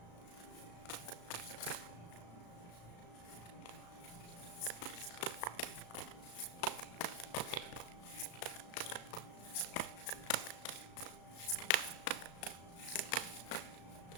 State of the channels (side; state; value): right; late; 35 ms